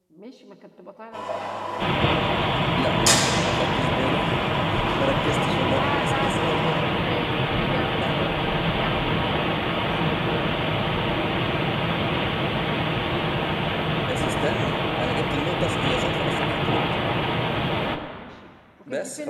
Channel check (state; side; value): identical; both; correlation 1.00